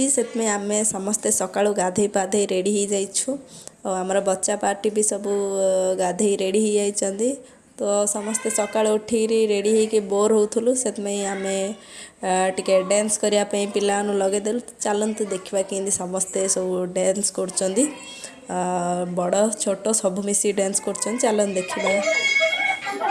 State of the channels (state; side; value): identical; both; correlation 1.00